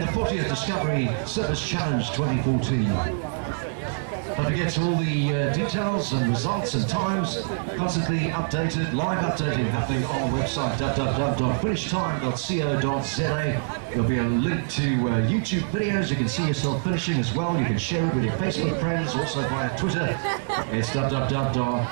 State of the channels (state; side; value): silent; left; digital silence